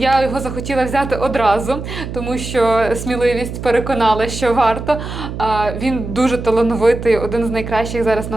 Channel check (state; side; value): noise; right; hum, 8 dB below the sound